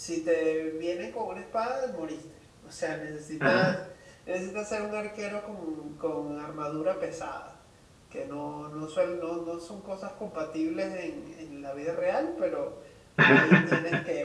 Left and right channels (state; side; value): identical; both; correlation 1.00